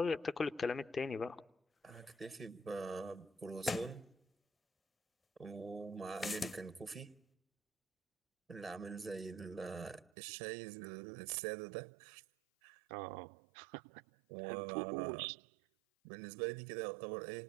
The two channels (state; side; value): drops out; left; at 10.1 s